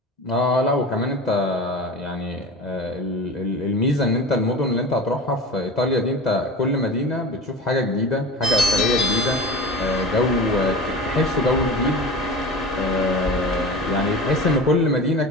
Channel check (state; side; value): normal; both; correlation 0.33